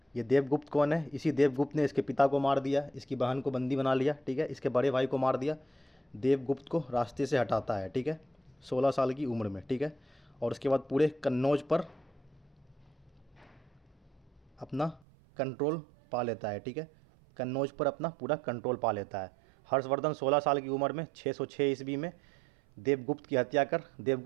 ये देवगुप्त कौन है? इसी देवगुप्त ने इसके पिता को मार दिया, इसकी बहन को बंदी बना लिया। ठीक है, इसके बड़े भाई को मार दिया। देवगुप्त को रास्ते से हटाता है। ठीक है, 16 साल की उम्र में। ठीक है, और उसके बाद पूरे कन्नौज पर अपना कंट्रोल पा लेता है। ठीक है, कन्नौज पर अपना पूरा कंट्रोल पा लेता है। हर्षवर्धन 16 साल की उम्र में 606 ईस्वी में देवगुप्त की हत्या कर,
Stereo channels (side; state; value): left; drops out; at 15.0 s